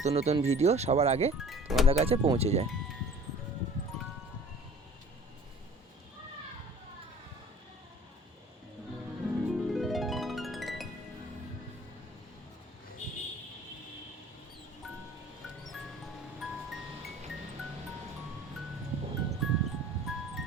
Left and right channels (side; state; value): both; normal; correlation 0.47